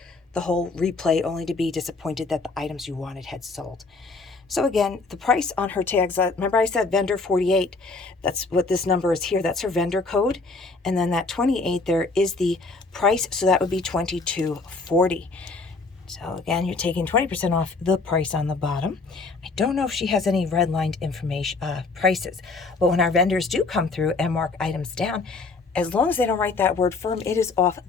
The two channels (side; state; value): right; quieter; 3.9 dB